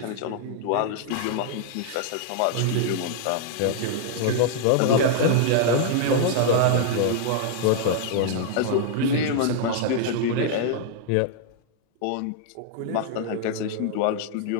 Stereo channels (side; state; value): both; different; correlation -0.01